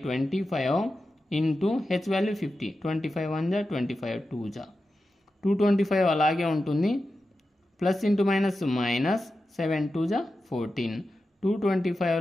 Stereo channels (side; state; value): both; normal; correlation 0.91